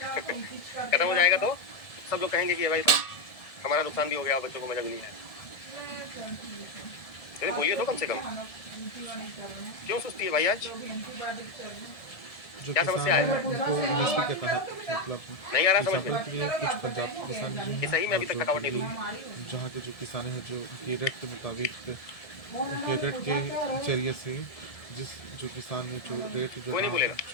हो जाएगा तो सब लोग कहेंगे कि भाई हमारा नुकसान भी हो गया, बच्चों को मजा भी नहीं आया। अरे बोलिए तो कम से कम, क्यों सुस्ती है भाई आज? क्या समस्या है? MSP के तहत मतलब नहीं आ रहा समझ एग्जाम्पल के लिए कुछ पंजाब किसान जो ये सही में अभी तक थकावट नहीं हुई। जहाँ के जो किसान हैं जो उनके रेट के मुताबिक उनके रेट के जरिए से जो किसान ने जो रेट कोई नहीं बोलेगा।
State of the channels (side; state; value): right; late; 1.7 ms